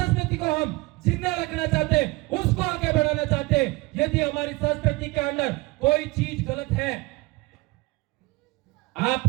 को हम जिंदा रखना चाहते हैं, उसको आगे बढ़ाना चाहते हैं। यदि हमारी संस्कृति के अंदर कोई चीज गलत है,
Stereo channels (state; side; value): quieter; left; 22.7 dB